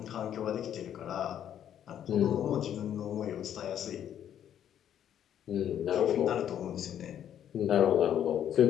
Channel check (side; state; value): right; quieter; 10.0 dB